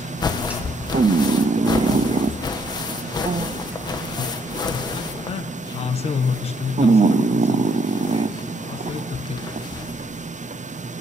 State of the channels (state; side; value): normal; both; correlation 0.70